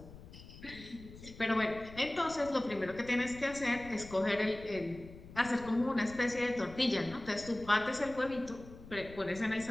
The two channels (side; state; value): left; noise; rumble, 16 dB below the sound